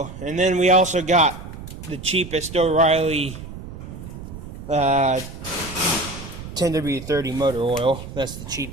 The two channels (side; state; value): right; noise; rumble, 12 dB below the sound